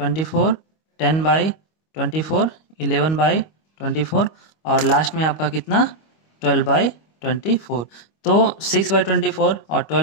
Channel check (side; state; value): right; late; 25 ms